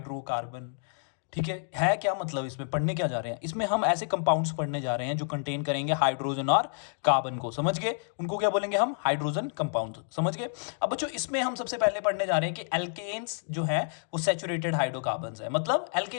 ठीक है क्या मतलब, इसमें पढ़ने क्या जा रहे हैं। इसमें हम ऐसे कंपाउंड्स पढ़ने जा रहे हैं जो कंटेन करेंगे हाइड्रोजन और कार्बन को। समझ गए, उनको क्या बोलेंगे हम, हाइड्रोजन कंपाउंड। समझ गए। अब बच्चों इसमें हम सबसे पहले पढ़ने जा रहे हैं कि एल्केन्स जो है वो सैचुरेटेड हाइड्रोकार्बन्स है। मतलब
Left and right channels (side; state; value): right; silent; digital silence